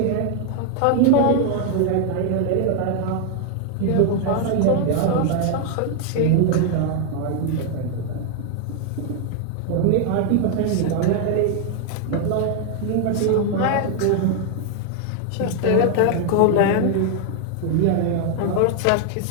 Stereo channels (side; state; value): both; different; correlation 0.00